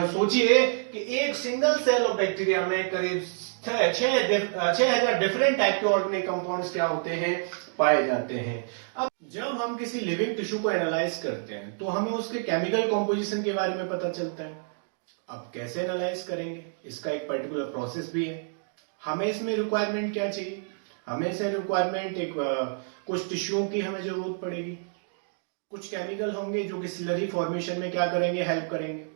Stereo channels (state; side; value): silent; left; digital silence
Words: सोचिए कि एक सिंगल सेल ऑफ बैक्टीरिया में करीब 6000 डिफरेंट टाइप के ऑर्गेनिक कंपाउंड्स क्या होते हैं, पाए जाते हैं। अब जब हम किसी लिविंग टिश्यू को एनालाइज करते हैं तो हमें उसके केमिकल कॉम्पोजिशन के बारे में पता चलता है। अब कैसे एनालाइज करेंगे, इसका एक पर्टिकुलर प्रोसेस भी है। हमें इसमें रिक्वायरमेंट क्या चाहिए, हमें इसे रिक्वायरमेंट एक कुछ टिश्यूओं की हमें जरूरत पड़ेगी, कुछ केमिकल होंगे जो कि स्लरी फॉर्मेशन में क्या करेंगे, हेल्प करेंगे।